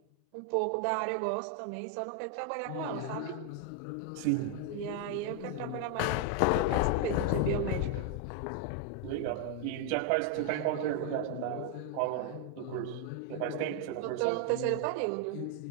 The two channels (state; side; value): different; both; correlation 0.00